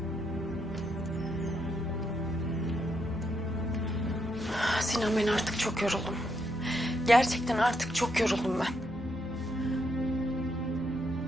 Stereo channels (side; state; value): both; normal; correlation 0.78